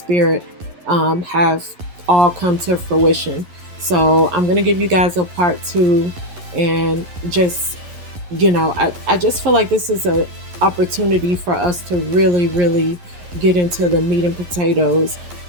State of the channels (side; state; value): left; late; 11 ms